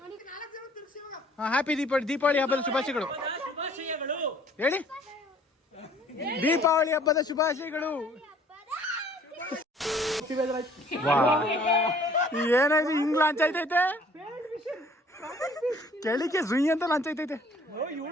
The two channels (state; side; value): normal; both; correlation 0.56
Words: ಹ್ಯಾಪಿ ದೀಪಾವಳಿ ಹಬ್ಬದ ಶುಭಾಶಯಗಳು ಹೇಳಿ. ದೀಪಾವಳಿ ಹಬ್ಬದ ಶುಭಾಶಯಗಳು. ಏನಾಯ್ತು ಹಿಂಗ್ ಲಾಂಚ್ ಆಯ್ತೈತೆ. ಕೆಳಿಕೆ ಸುಯಿ ಅಂತ ಲಂಚ ಐತೈತೆ.